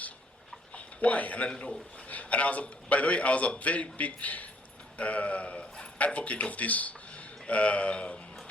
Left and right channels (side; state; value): both; normal; correlation 0.64